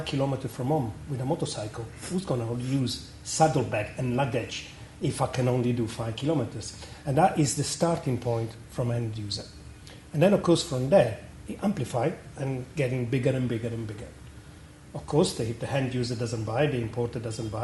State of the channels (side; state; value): both; identical; correlation 1.00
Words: kilometers from home with a motorcycle. Who's going to use saddlebag and luggage if I can only do 5 kilometers?" And that is the starting point from end user. And then, of course, from there, it amplifies and getting bigger and bigger and bigger. Of course, if the end user doesn't buy, the importer doesn't